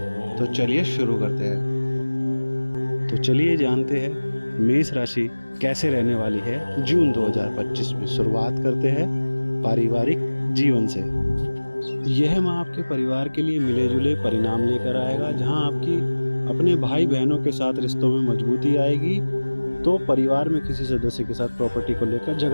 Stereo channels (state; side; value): inverted; both; correlation -1.00